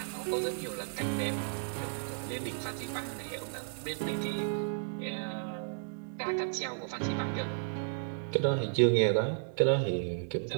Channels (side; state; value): left; silent; digital silence